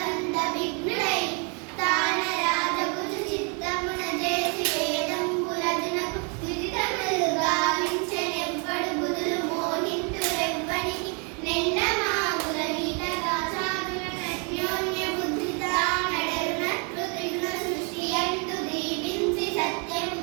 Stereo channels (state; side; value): quieter; left; 36.1 dB